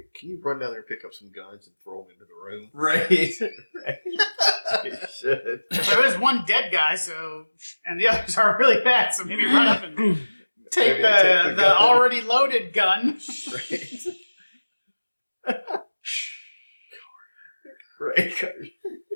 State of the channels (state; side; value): inverted; both; correlation -1.00